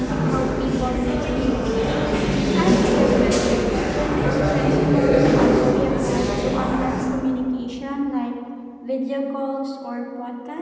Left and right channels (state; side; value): identical; both; correlation 1.00